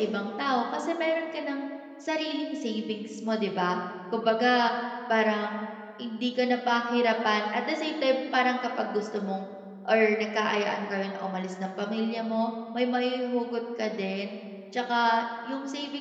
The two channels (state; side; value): identical; both; correlation 1.00